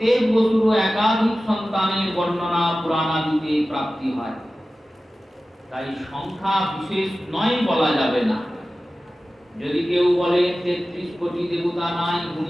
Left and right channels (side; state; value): both; normal; correlation 0.95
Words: বসুরও একাধিক সন্তানের বর্ণনা পুরাণাদিতে প্রাপ্তি হয়। তাই সংখ্যা বিশেষ নয় বলা যাবে না। যদি কেউ বলে 33 কোটি দেবতা নাই,